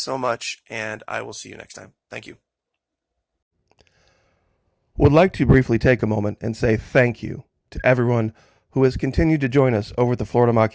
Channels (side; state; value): both; identical; correlation 1.00